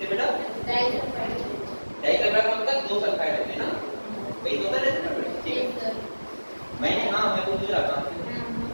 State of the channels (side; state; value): both; inverted; correlation -1.00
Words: बेटा, डाइसल्फाइड का मतलब दो सल्फाइड होते हैं ना, वही तो होता है। ठीक है, मैंने मैं तो रहा था,